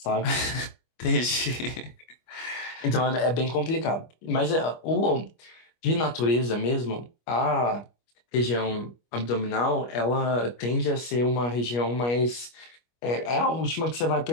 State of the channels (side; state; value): right; late; 25 ms